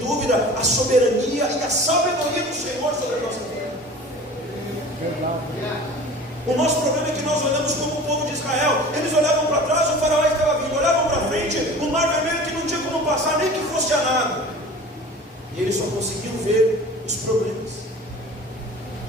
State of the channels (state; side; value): normal; both; correlation 0.41